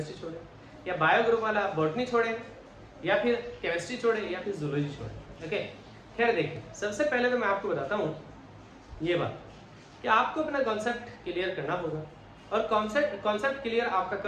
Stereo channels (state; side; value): identical; both; correlation 1.00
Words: छोड़ें, या बायो ग्रुप वाला बॉटनी छोड़ें, या फिर केमिस्ट्री छोड़ें, या फिर जूलॉजी छोड़ें, ओके। खैर देखिए, सबसे पहले तो मैं आपको बताता हूँ ये बात कि आपको अपना कॉन्सेप्ट क्लियर करना होगा, और कॉन्सेप्ट क्लियर आपका